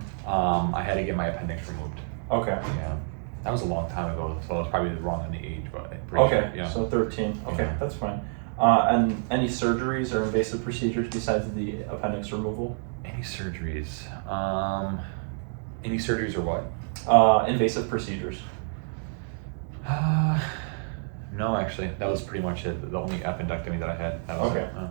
I had to get my appendix removed. Okay. Yeah. That was a long time ago, so I was probably wrong on the age, but I'm pretty Okay, sure. Yeah. so 13. Okay, Yeah. that's fine. And any surgeries or invasive procedures besides the appendix removal? Any surgeries? Any surgeries or what? Invasive procedures. No, actually, that was pretty much it. The only appendectomy that I had. That was Okay, it.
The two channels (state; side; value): silent; left; 60 dB below the other